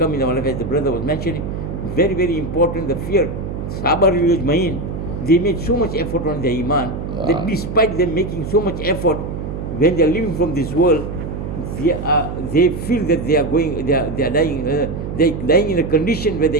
in our life, as the brother was mentioning. Very, very important. The fear. Sahaba Mahin, they made so much effort on their iman that despite them making so much effort, when they are living from this world, they feel that they are dying in a condition where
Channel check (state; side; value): noise; right; hum, 6 dB below the sound